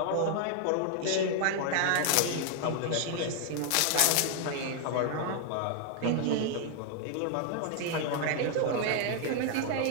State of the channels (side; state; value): both; different; correlation 0.00